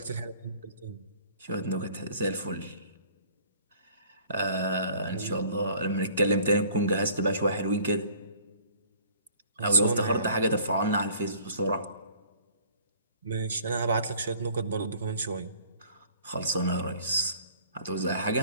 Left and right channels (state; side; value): inverted; both; correlation -0.54